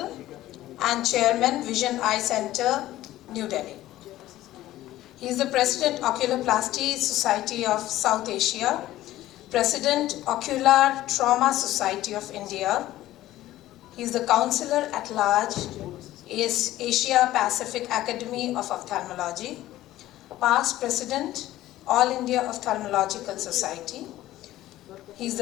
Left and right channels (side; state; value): right; quieter; 15.0 dB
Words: and Chairman, Vision Eye Center, New Delhi. He is the President, Oculoplasty Society of South Asia, President, Ocular Trauma Society of India. He is the Counselor at Large, Asia Pacific Academy of Ophthalmology, past President, All India Ophthalmological Society. He is